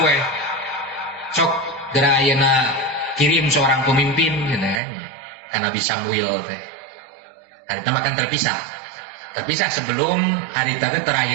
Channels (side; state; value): left; drops out; at 4.8 s